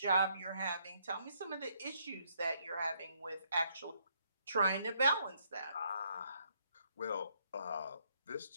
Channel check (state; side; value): inverted; both; correlation -0.71